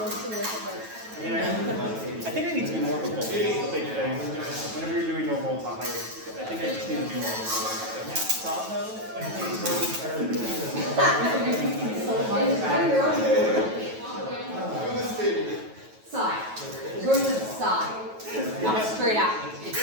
with it, but I think I need to be more of a bull. It's a big thing. Whenever you're doing normal Tahoe, I think I just need to do more of a bull. Tahoe? Side. Go to the side. Not straight out.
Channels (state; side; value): late; left; 9.2 ms